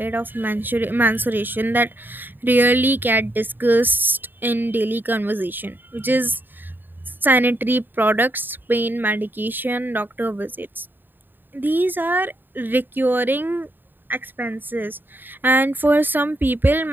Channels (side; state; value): left; late; 0.093 ms